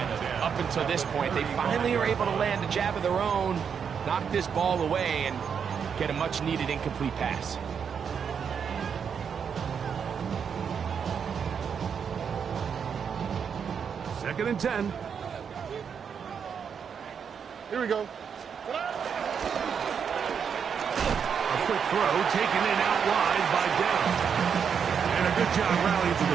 of it up until this point. They finally are able to land a jab of their own, knock this ball away, and get a much-needed incomplete pass. Second and 10. Here we go. A quick throw taken in out wide by Downs. And And a good job rallying to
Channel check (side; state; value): left; quieter; 7.0 dB